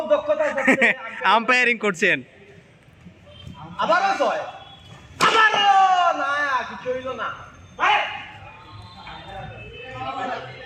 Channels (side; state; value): both; identical; correlation 1.00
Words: দক্ষতা আছে আম্পায়ারিং করছেন আবারও ছয় না কিছু হইল না